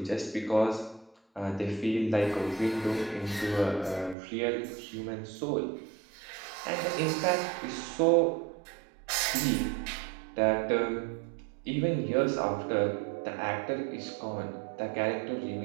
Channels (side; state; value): left; drops out; at 4.2 s